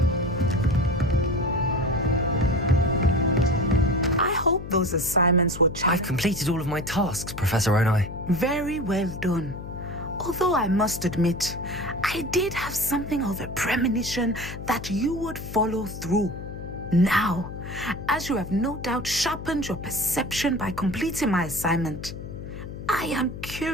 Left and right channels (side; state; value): left; noise; hum, 10 dB below the sound